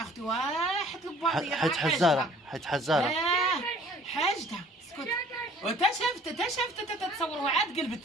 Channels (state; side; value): normal; both; correlation 0.53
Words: اختي واحد الباطيه حيت حزاره حاجتها. اسكت. وتا شافت تتصوروها عاد قلبت.